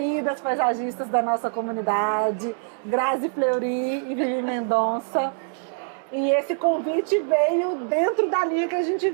paisagistas da nossa comunidade, Grazi Fleury e Vivi Mendonça. E esse convite veio dentro da linha que a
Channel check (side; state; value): left; silent; 62 dB below the other